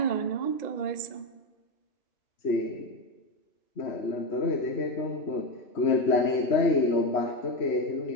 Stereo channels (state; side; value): late; right; 3.1 ms